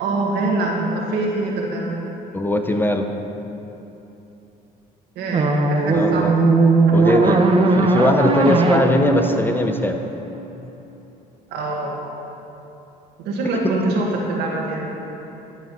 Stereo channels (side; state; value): both; normal; correlation 0.64